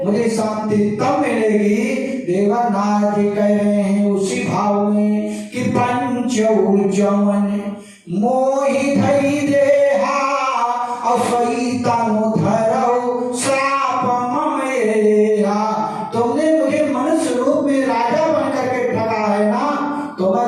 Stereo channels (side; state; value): both; identical; correlation 1.00